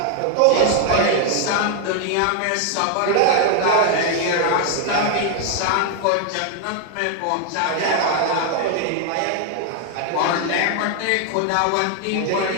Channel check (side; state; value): both; different; correlation 0.00